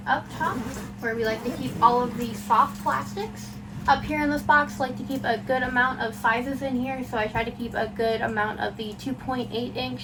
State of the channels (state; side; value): identical; both; correlation 1.00